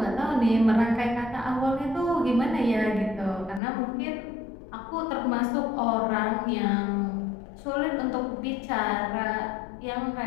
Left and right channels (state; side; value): drops out; right; at 3.6 s